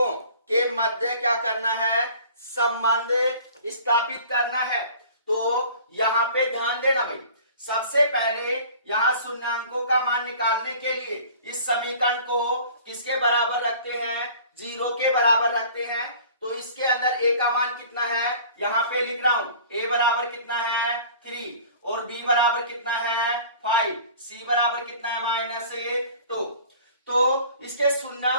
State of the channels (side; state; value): both; inverted; correlation -0.46